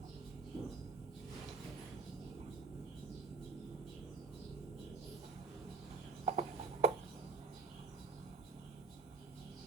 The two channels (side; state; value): left; quieter; 3.9 dB